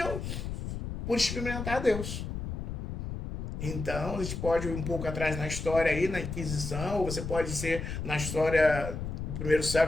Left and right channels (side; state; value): left; noise; rumble, 5 dB below the sound